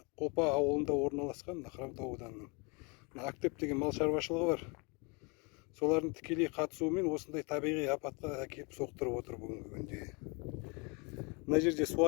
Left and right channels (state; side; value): quieter; right; 30.9 dB